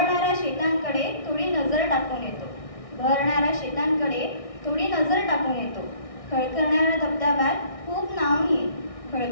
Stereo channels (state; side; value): late; right; 1.6 ms